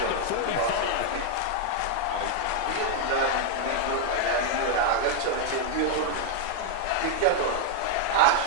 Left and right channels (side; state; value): both; different; correlation 0.00